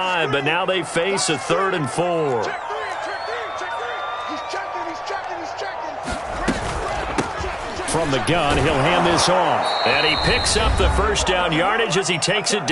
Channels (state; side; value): identical; both; correlation 1.00